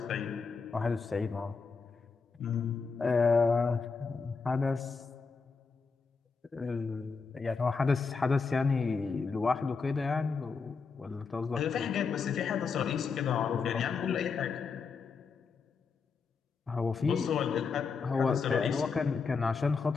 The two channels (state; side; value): quieter; right; 5.0 dB